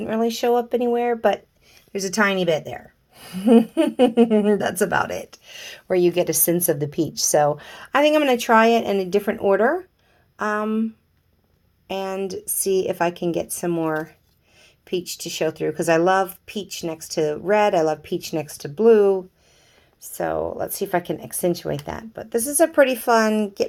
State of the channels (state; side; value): identical; both; correlation 1.00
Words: really show up anywhere, but there's a tiny bit there. That's about it, where you get a sense of the peach. So I think I'm going to try it in a different order and see if I can get some more peach to show through, because I love peach next to red. I love peach next to blue. So let's see if I can accentuate that. But this is a pretty fun